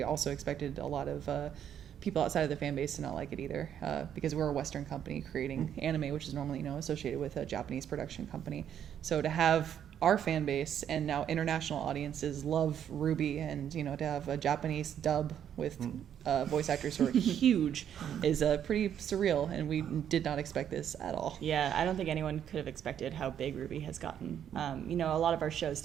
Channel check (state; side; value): quieter; left; 9.4 dB